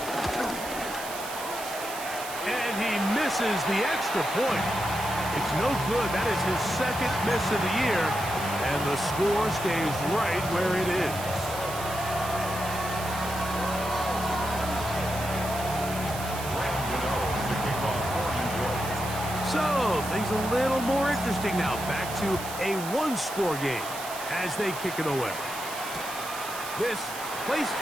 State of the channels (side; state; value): right; noise; hiss, 10 dB below the sound